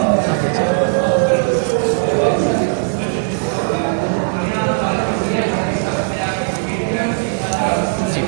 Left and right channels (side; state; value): left; silent; 60 dB below the other